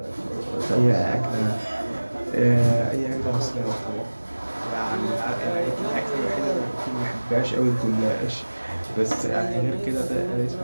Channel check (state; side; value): inverted; both; correlation -1.00